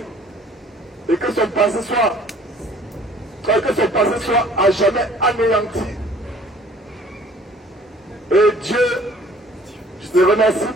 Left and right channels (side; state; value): both; normal; correlation 0.53